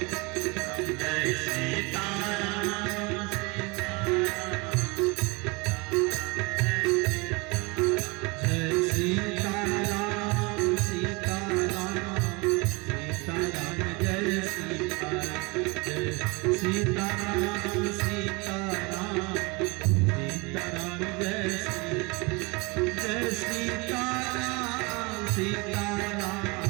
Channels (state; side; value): quieter; left; 27.3 dB